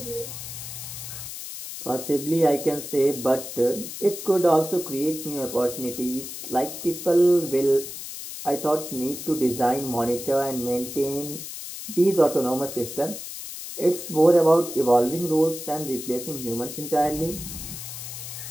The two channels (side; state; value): left; noise; hiss, 9 dB below the sound